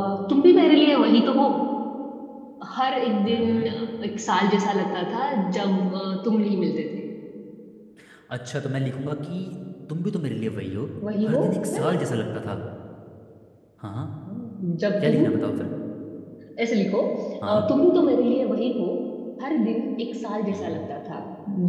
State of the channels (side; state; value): both; identical; correlation 1.00